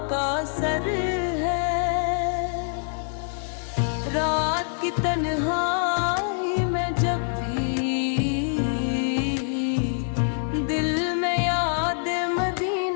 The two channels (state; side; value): silent; right; 62 dB below the other